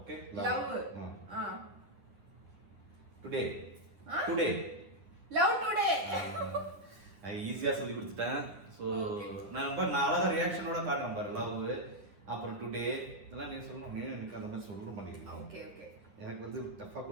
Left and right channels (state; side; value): late; left; 9.9 ms